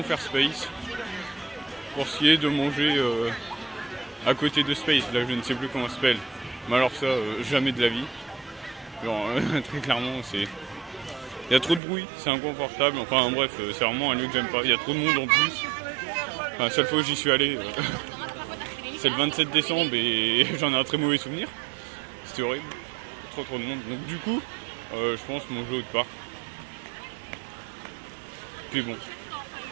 faire Space. Pour ce qui est de manger... à côté de Space, là je ne sais plus comment ça s'appelle, mais alors ça, jamais de la vie. Genre, très clairement, c'est... Il y a trop de bruit, c'est inconfortable, enfin bref, c'est vraiment un lieu que j'aime pas. Il y a trop de monde en plus. Enfin, la seule fois où j'y suis allé, c'est le 27 décembre et j'en ai un très mauvais souvenir. C'était horrible, trop de monde. Donc du coup, je pense manger autre part. Puis bon,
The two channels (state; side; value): drops out; left; at 11.8 s